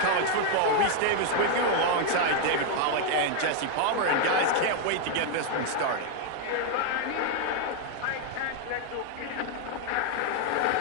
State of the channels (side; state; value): both; different; correlation 0.00